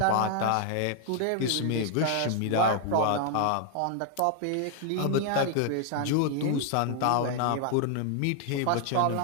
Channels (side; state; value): both; different; correlation 0.00